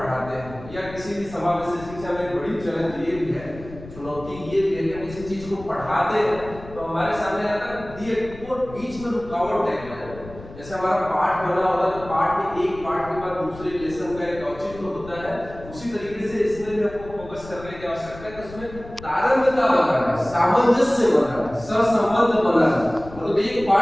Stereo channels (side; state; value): left; noise; rumble, 16 dB below the sound